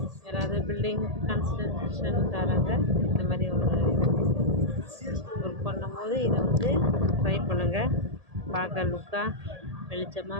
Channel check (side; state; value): left; late; 1.8 ms